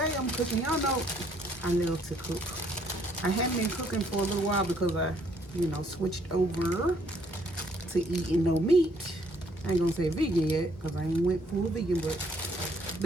I'm cooking. Y'all know I love to cook. I haven't been cooking for a little while because I, switched over to eating no meat. I ain't gonna say vegan yet because I ain't went full vegan, but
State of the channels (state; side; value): normal; both; correlation 0.66